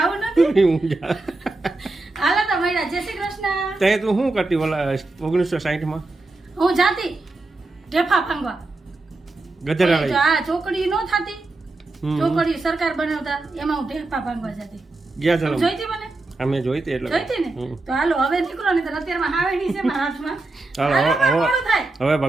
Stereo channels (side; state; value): left; quieter; 3.1 dB